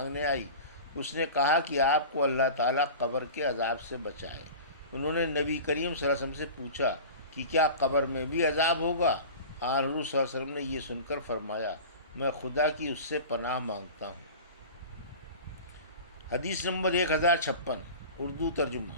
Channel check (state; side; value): inverted; both; correlation -0.35